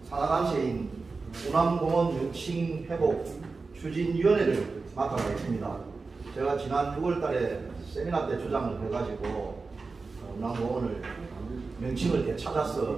산하단체인 운암공원 명칭회복 추진위원회를 맡아가 있습니다. 제가 지난 6월달에 세미나 때 주장을 해가지고 운암공원을 명칭을 되찾아서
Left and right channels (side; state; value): left; quieter; 4.1 dB